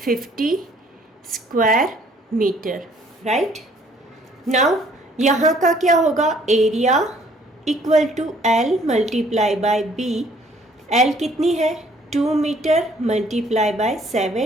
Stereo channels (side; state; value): both; normal; correlation 0.60